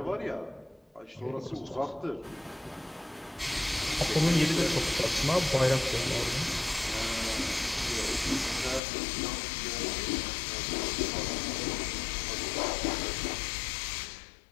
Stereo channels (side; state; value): right; drops out; at 8.8 s